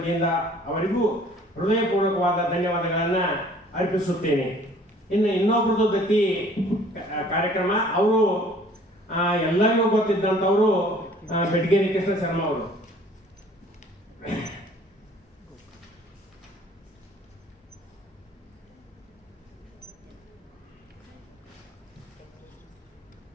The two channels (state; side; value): normal; both; correlation 0.54